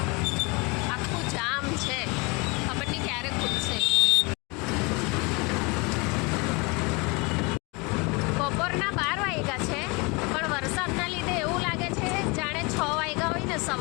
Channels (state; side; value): quieter; right; 28.2 dB